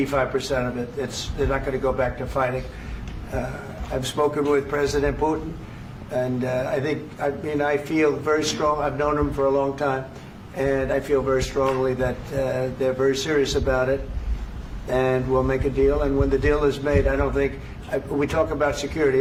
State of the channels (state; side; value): identical; both; correlation 1.00